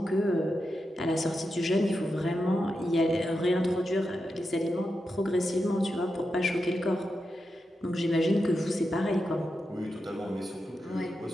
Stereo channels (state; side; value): normal; both; correlation 0.88